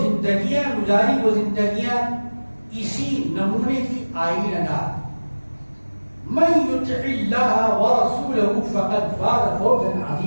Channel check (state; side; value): inverted; both; correlation -1.00